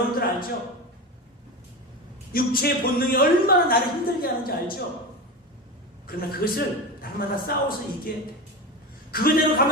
알죠? 육체의 본능이 얼마나 나를 힘들게 하는지 알죠? 그러나 그것을 날마다 싸워서 이겨야 돼. 그거대로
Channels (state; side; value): normal; both; correlation 0.23